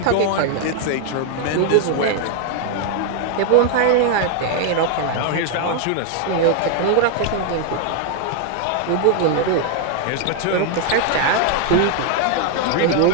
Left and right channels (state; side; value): different; both; correlation 0.00